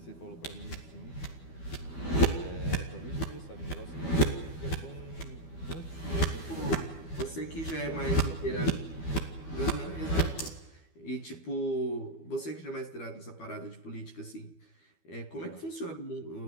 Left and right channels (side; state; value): right; late; 12 ms